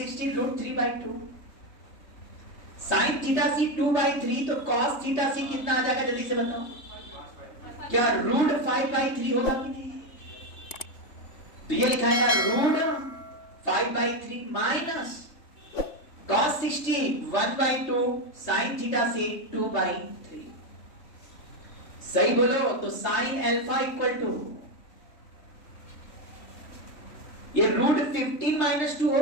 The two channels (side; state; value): right; late; 3.5 ms